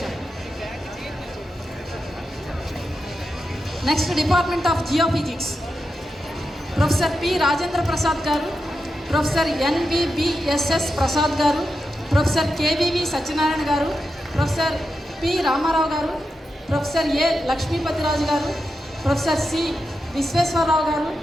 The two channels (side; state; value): both; normal; correlation 0.89